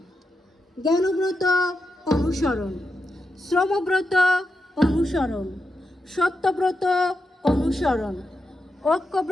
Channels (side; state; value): both; normal; correlation 0.86